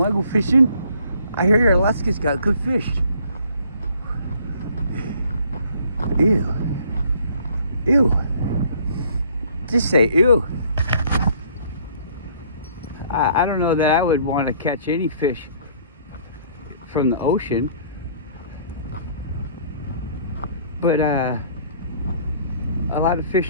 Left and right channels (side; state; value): both; inverted; correlation -0.58